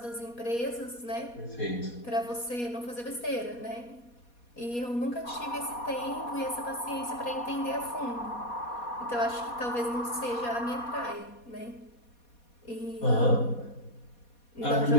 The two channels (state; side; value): late; right; 4.2 ms